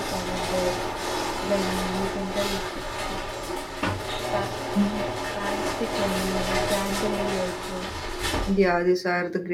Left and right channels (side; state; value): both; identical; correlation 1.00